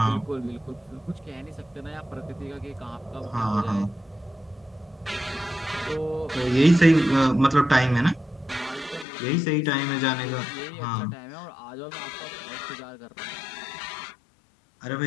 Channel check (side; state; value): right; drops out; at 9.1 s